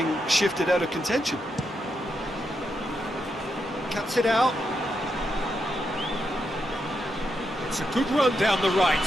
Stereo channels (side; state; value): both; normal; correlation 0.83